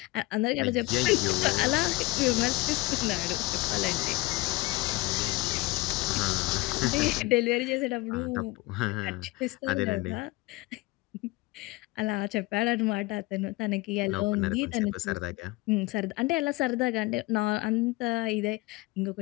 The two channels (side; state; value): right; quieter; 21.1 dB